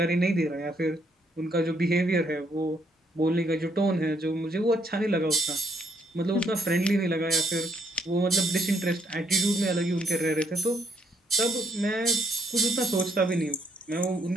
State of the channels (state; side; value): normal; both; correlation 0.72